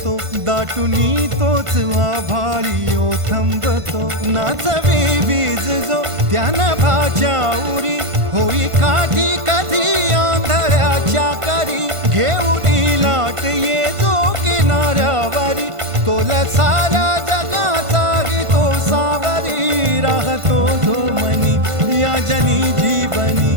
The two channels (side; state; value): left; late; 1.5 ms